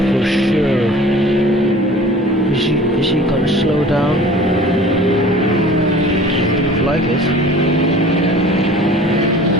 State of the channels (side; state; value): both; normal; correlation 0.45